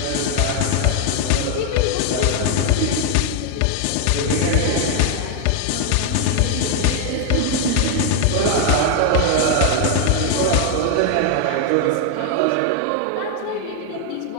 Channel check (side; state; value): both; different; correlation 0.00